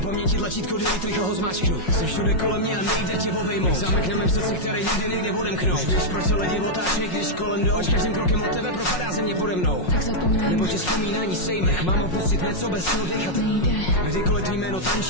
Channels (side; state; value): right; late; 5.5 ms